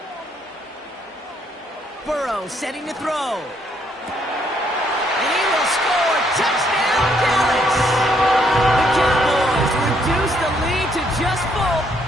Burrow setting to throw. And he will score. Touchdown, Dallas! The Cowboys reduce the lead to just 4.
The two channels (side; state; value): both; normal; correlation 0.70